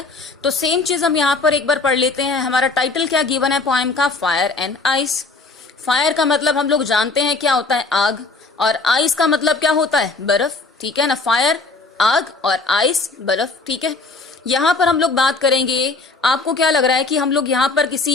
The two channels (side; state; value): right; quieter; 3.7 dB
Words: तो सेम चीज हम यहाँ पर एक बार पढ़ लेते हैं. हमारा टाइटल क्या गिवन है पोएम का? Fire and ice. फायर का मतलब हम लोग जानते हैं क्या होता है? आग. और आइस का मतलब क्या होता है? बर्फ. ठीक है ना? फायर आग और आइस बर्फ. ठीक है, यहाँ पर हम लोग बात करेंगे. आपको क्या लग रहा है कि हम लोग यहाँ पर